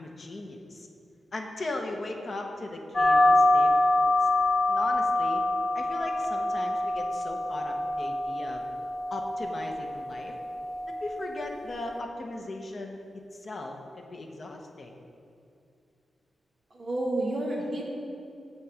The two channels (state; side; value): normal; both; correlation 0.93